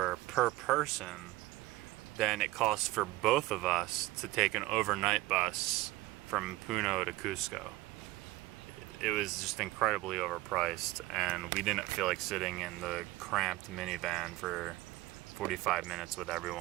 per person than it cost for both of us to take an overnight bus from Puno to Cusco. It was just incredibly overpriced, and we didn't feel like sitting in the cramped minivan for 45 minutes with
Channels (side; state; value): left; quieter; 18.7 dB